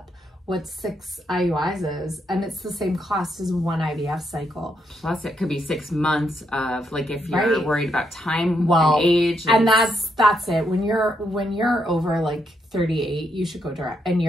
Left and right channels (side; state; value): both; normal; correlation 0.78